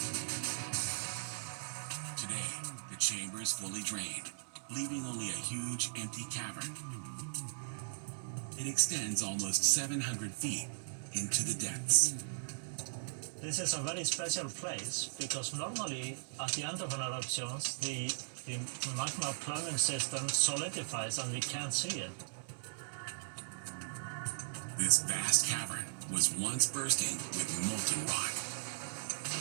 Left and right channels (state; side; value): silent; left; digital silence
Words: Today, the chamber is fully drained, leaving only a huge empty cavern. It extends almost 700 feet into the depths. This is a very special place because normally at the end of an eruption, the magma plumbing system solidifies and we can't see it. This vast cavern was once bursting with molten rock.